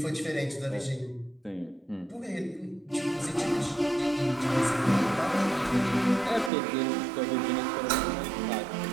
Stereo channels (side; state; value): left; drops out; at 6.5 s